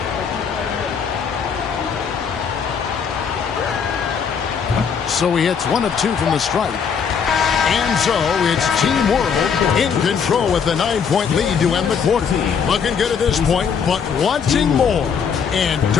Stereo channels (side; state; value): right; quieter; 6.7 dB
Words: So he hits 1 of 2 from the stripe. And so it's Team World in control with a 9-point lead to end the quarter. Looking good at this point, but wanting more. And